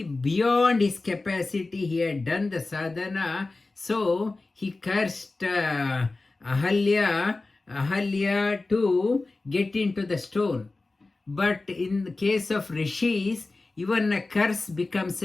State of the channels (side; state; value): right; quieter; 3.4 dB